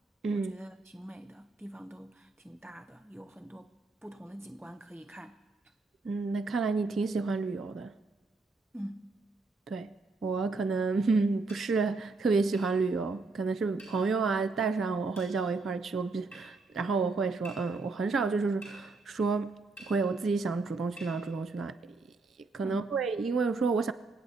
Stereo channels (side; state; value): left; quieter; 3.9 dB